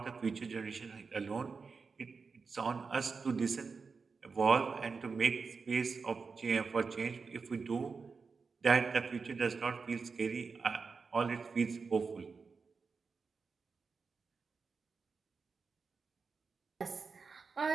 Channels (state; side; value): quieter; left; 4.9 dB